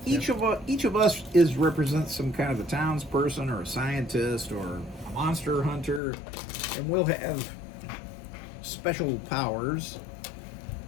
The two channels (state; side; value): drops out; right; at 6.0 s